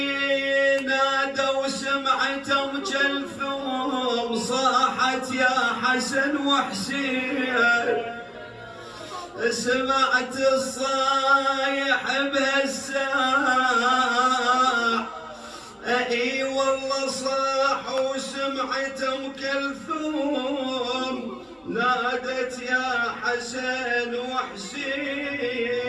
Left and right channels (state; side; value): identical; both; correlation 1.00